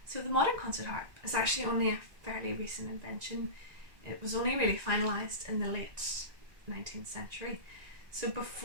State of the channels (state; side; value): late; left; 1.9 ms